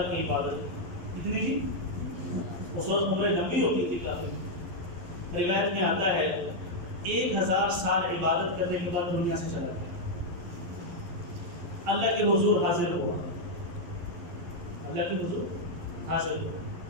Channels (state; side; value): late; left; 12 ms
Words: کی عبادت. کتنی جی؟ اس وقت عمریں لمبی ہوتی تھی کافی. روایت میں آتا ہے 1000 سال عبادت کرنے کے بعد دنیا سے چلا گیا. اللہ کے حضور حاضر ہوا، اللہ کے حضور حاضر ہوا.